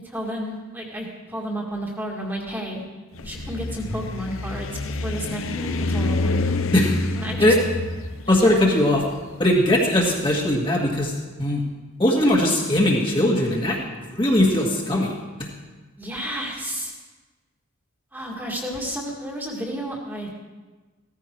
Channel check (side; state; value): both; normal; correlation 0.59